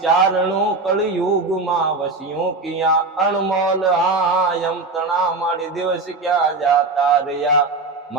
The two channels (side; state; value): left; quieter; 3.6 dB